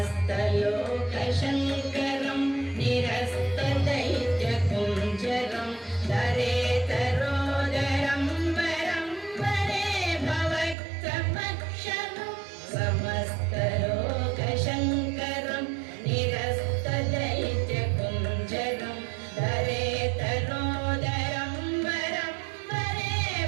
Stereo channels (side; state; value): left; drops out; at 10.8 s